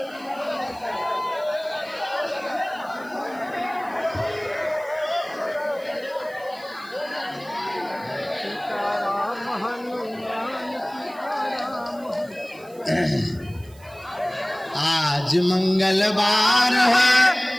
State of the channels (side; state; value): right; noise; hiss, 25 dB below the sound